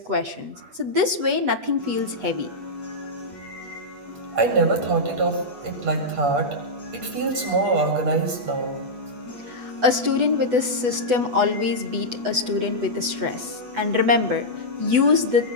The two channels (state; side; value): late; left; 8.1 ms